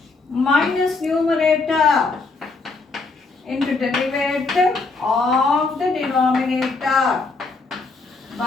minus numerator into derivative of the denominator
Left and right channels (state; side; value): quieter; right; 3.9 dB